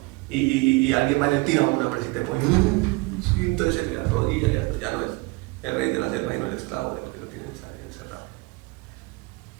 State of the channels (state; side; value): quieter; left; 25.2 dB